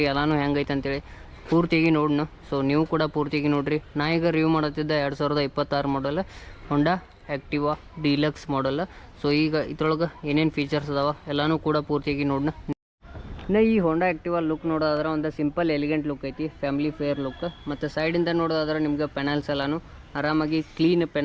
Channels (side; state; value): both; identical; correlation 1.00